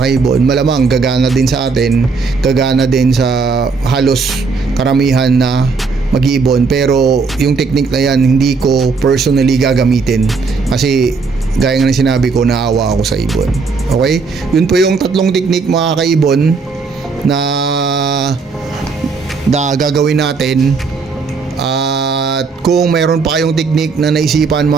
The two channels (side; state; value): left; quieter; 4.7 dB